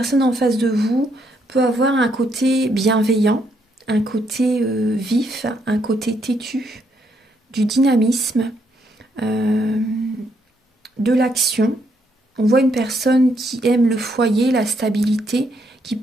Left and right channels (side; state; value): both; normal; correlation 0.74